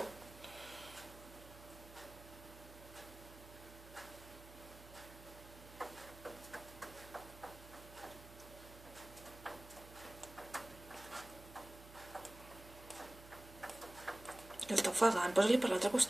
El està ofegant, posa-li per l'altre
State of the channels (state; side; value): noise; right; hum, 17 dB below the sound